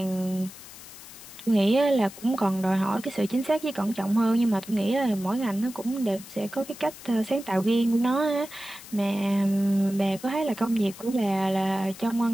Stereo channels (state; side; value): noise; left; hiss, 17 dB below the sound